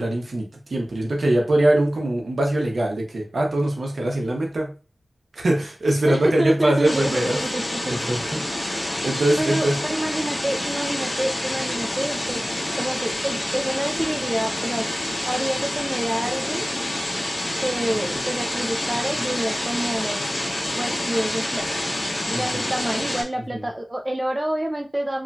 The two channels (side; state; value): both; normal; correlation 0.96